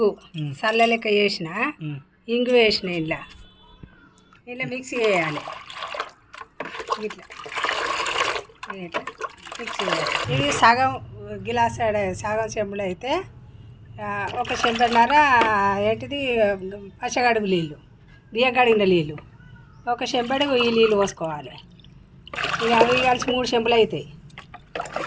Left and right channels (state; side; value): identical; both; correlation 1.00